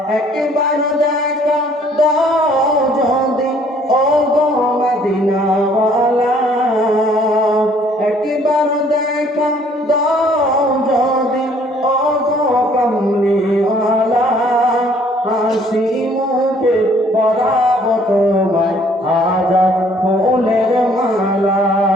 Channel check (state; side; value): normal; both; correlation 0.60